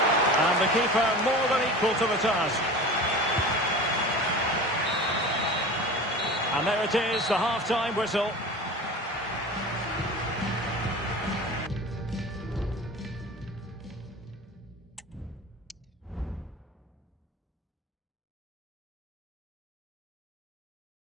And the keeper more than equal to the task. And there it is, the half-time whistle.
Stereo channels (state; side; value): normal; both; correlation 0.35